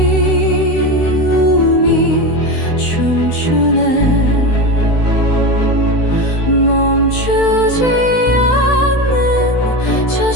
춤추네. 멈추지 않는 저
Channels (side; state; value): right; late; 16 ms